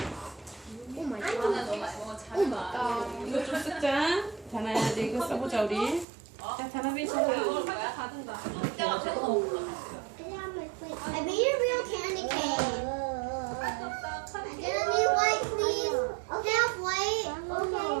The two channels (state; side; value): drops out; left; at 6.1 s